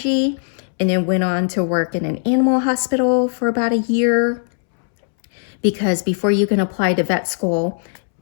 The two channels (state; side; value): silent; right; 67 dB below the other